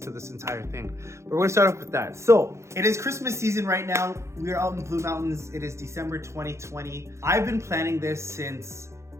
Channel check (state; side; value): late; left; 0.14 ms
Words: this entire thing. But we're going to start off with that. So it is Christmas season right now. We are out in Blue Mountains. It is December 2020. I've been planning this since